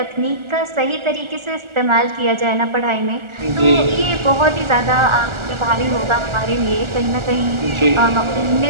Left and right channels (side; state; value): left; late; 1.4 ms